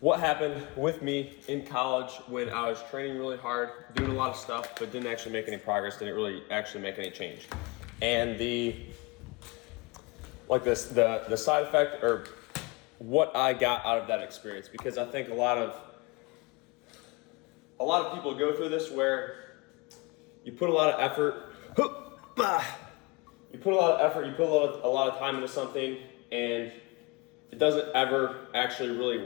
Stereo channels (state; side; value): quieter; right; 26.6 dB